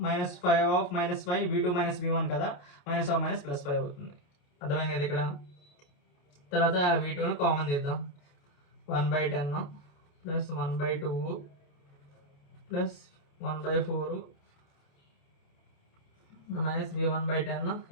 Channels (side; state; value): right; late; 28 ms